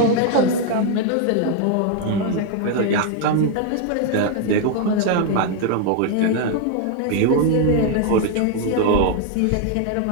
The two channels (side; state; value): both; different; correlation 0.01